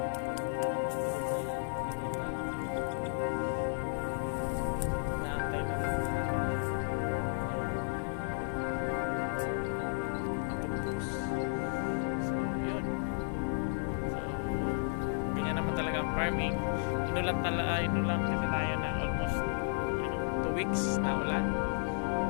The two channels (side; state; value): right; silent; digital silence